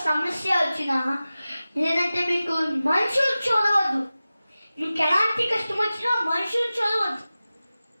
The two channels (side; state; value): both; inverted; correlation -0.96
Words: సమస్య వచ్చినా, లేదంటే మీకు మనుషులు చూడవద్దు. మీకు ఎలాంటి కష్టం వచ్చినా మనుషులు చూడవద్దు,